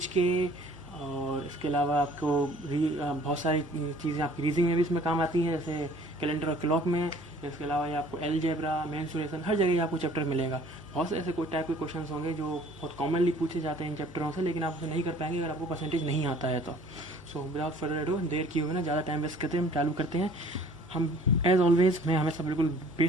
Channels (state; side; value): normal; both; correlation 0.53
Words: के, और इसके अलावा आपको बहुत सारी चीज़ें आपकी रीजनिंग में भी इसमें काम आती हैं, जैसे कैलेंडर और क्लॉक में। इसके अलावा ये आपको एलजेब्रा, मेंसुरेशन, हर जगह आपको चैप्टर मिलेगा। बहुत से ऐसे कोई टाइप के क्वेश्चन होंगे जो बहुत कॉमनली पूछे जाते हैं इन चैप्टरों से, लेकिन आप उसे नहीं कर पाएंगे अगर आपको परसेंटेज नहीं आता है तो। सो विदाउट फर्दर अडू, देर किए हुए ना ज़्यादा टाइम वेस्ट करते हैं, हम चालू करते हैं। हम एज ऑलवेज मैं हमेशा बिल्कुल